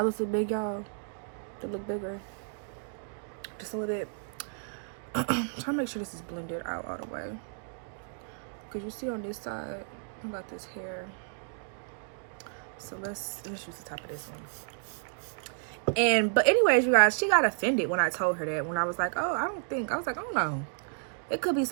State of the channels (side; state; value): left; silent; digital silence